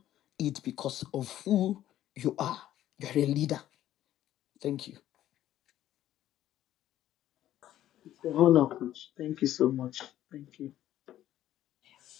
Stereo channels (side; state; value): right; quieter; 12.7 dB